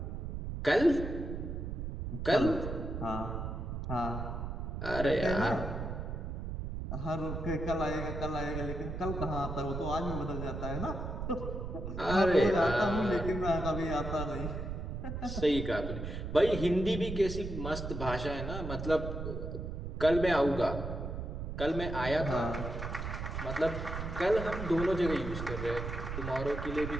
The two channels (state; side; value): noise; right; rumble, 5 dB below the sound